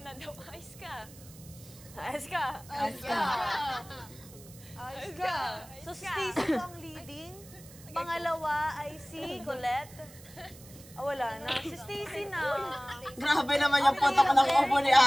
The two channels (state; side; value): noise; right; hiss, 20 dB below the sound